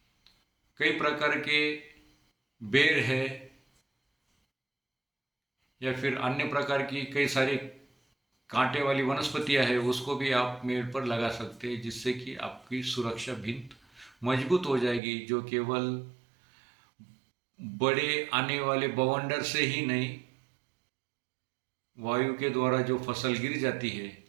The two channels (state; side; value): drops out; left; at 15.0 s